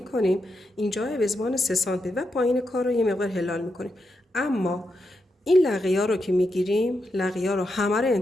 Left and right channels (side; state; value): both; normal; correlation 0.85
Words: اینجا به 3 سانتی و پایین کار رو یه مقدار هلال میکنیم. اما این لقیه رو که میگیریم، لقیه رو همه رو